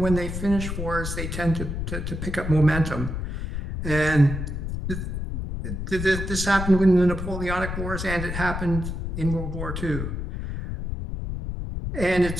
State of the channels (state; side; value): noise; left; rumble, 4 dB below the sound